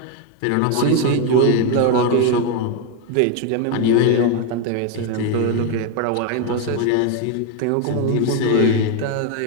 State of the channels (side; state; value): both; different; correlation 0.01